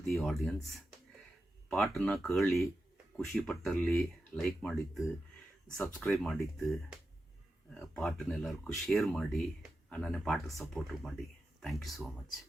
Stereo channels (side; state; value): both; normal; correlation 0.90